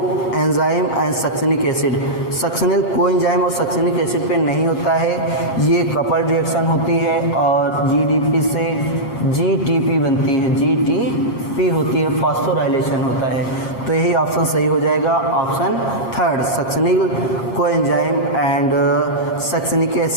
enzyme and succinic acid, succinyl को एंजाइम और सक्सिनिक एसिड पे नहीं होता है, ये कपल रिएक्शन होती है और जीडीपी से जीटीपी बनती है, जीटीपी होती है, फॉस्फोराइलेशन होता है। तो यही ऑप्शन सही हो जाएगा, ऑप्शन थर्ड, सक्सिनिल को एंजाइम एंड सक्सिनिक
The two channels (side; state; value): right; late; 8.4 ms